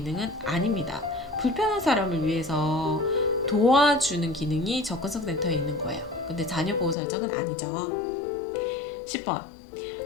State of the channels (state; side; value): drops out; right; at 7.0 s